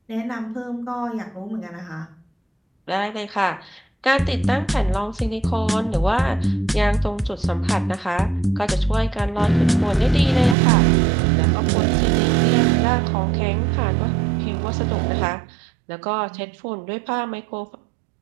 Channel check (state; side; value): drops out; left; at 10.6 s